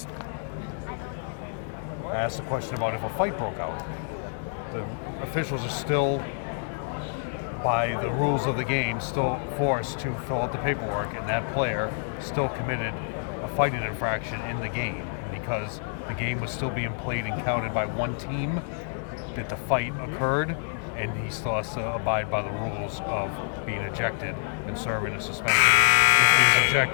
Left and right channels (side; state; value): right; silent; 60 dB below the other